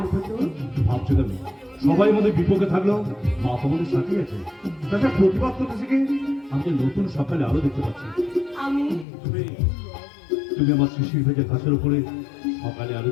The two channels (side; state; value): right; drops out; at 9.1 s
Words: তো? ভাবছো কেন? সবাই আমাদের বিপক্ষে থাকলেও মা তো আমাদের সাথেই আছে। তাছাড়া প্রতিবাদ করতে শিখে আমাকে নতুন সকালে আলো দেখতে পাচ্ছি। আমি তুমি আমার শিশির ভেজা ঘাসের উপরে সকালে